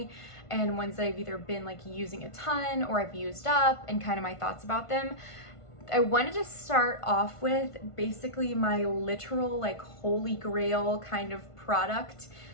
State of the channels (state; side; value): late; right; 1.5 ms